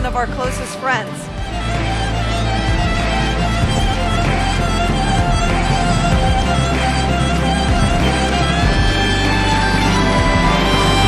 of our closest friends.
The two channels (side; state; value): both; identical; correlation 1.00